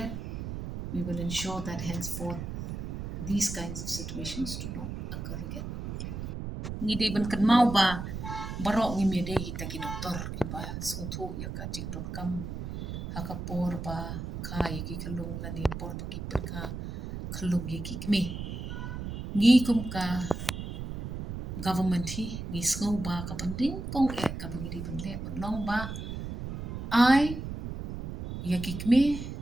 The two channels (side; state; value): right; noise; rumble, 6 dB below the sound